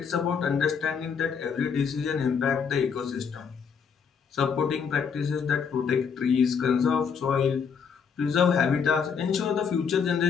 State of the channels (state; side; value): quieter; right; 6.4 dB